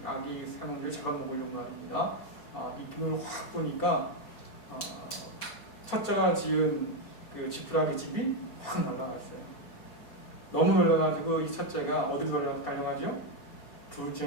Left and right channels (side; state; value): right; late; 4.7 ms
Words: 아기 삼형제를 잡아먹으려고 말입니다. 입김을 확 보니까 첫째가 지은 그 지푸라기 집이 확 날아갔어요. 너무 놀라가지고 이 첫째가 어디로 달려가죠?